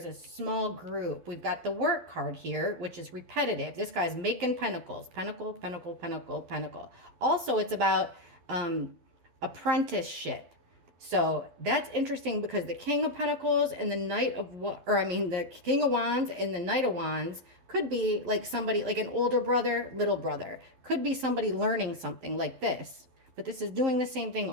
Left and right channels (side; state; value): left; late; 12 ms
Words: a small group. We've got the work card here, which is repetitive. This guy's making pentacles. Pentacle, pentacle, pentacle, pentacle. Also, it's about apprenticeship. So that's interesting because the King of Pentacles and the Knight of the King of Wands and the Knight of Wands could be like somebody, like an older brother, little brother. Could be somebody learning something like this. But this is doing the same thing